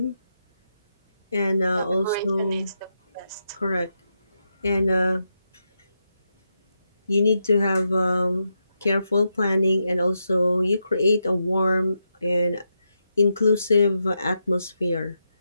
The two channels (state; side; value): inverted; both; correlation -0.84